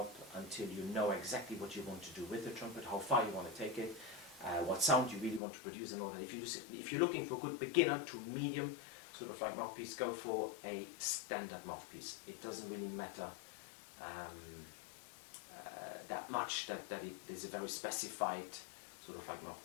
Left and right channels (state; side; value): drops out; right; at 5.4 s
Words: until you know exactly what you want to do with the trumpet, how far you want to take it, what sound you really want to produce and all that, if you're looking for a good beginner to medium sort of like mouthpiece, go for a standard mouthpiece. It doesn't really matter that much that there's a very specified sort of like